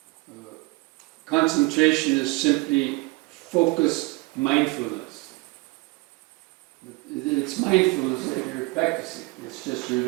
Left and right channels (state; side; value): quieter; left; 24.6 dB